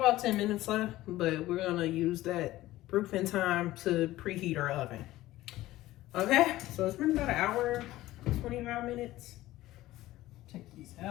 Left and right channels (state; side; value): quieter; right; 16.3 dB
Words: 10 minutes left, but we're gonna use that proofing time to preheat our oven. Okay, so it's been about an hour 25 minutes. Take these